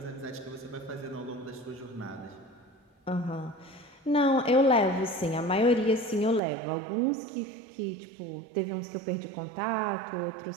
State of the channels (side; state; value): left; drops out; at 6.4 s